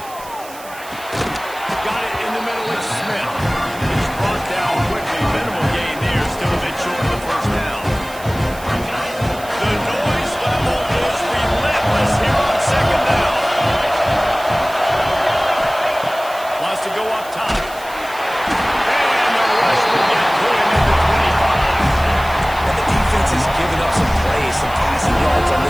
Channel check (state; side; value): noise; right; hiss, 18 dB below the sound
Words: Got it in the middle. It's Smith. He's brought down quickly. Minimal gain there. Still a bit short of the first down. The noise level is relentless here on second down. Wants to go up top. And the rush will get to him at the 25. And the defense has given up some plays, some passing yards on